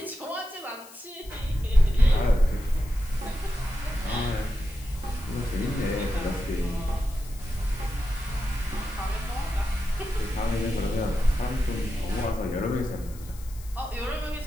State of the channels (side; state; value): left; noise; hiss, 20 dB below the sound